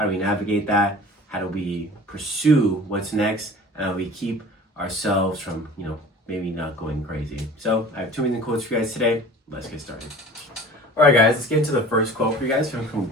do we navigate that? How do we pursue what's next? And how do we keep ourselves from, maybe not going crazy? So I have two amazing quotes for you guys today. Let's get started. All right, guys, let's get into the first quote for you guys from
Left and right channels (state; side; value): normal; both; correlation 0.43